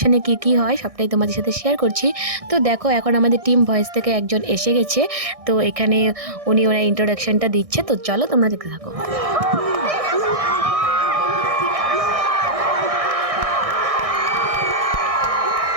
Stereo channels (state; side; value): late; left; 1.6 ms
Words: কি হয়, সবটাই তোমাদের সাথে শেয়ার করছি। তো দেখো এখন আমাদের টিম ভয়েস থেকে একজন এসে গেছে, তো এখানে ওরা ইন্ট্রোডাকশনটা দিচ্ছে। তো চলো তোমরা দেখতে থাকো।